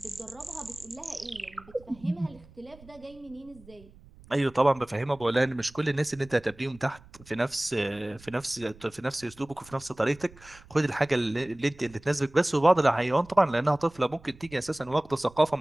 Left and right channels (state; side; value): noise; right; rumble, 23 dB below the sound